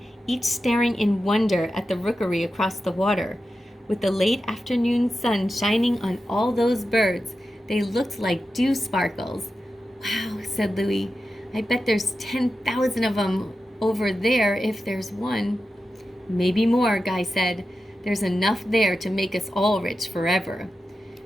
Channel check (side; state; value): both; normal; correlation 0.91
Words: each staring in wonder at the rookery across the water. With the late afternoon sun shining on all those birds, they looked like dew sparkles. Wow, said Louie. I bet there's 10,000 of them over there if there's one. Maybe more, Guy said. There's enough there to make us all rich forever.